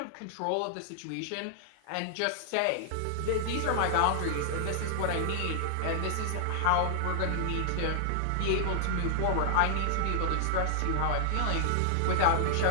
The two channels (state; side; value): different; both; correlation -0.01